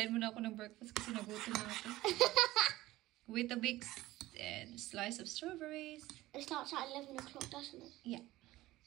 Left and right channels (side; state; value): left; quieter; 17.1 dB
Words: muna ako ng breakfast kasi nagutom na ako. With a big slice of strawberries. It starts at 11 o'clock, doesn't it? Yeah.